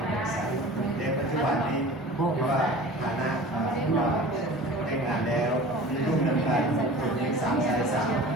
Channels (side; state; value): both; normal; correlation 0.40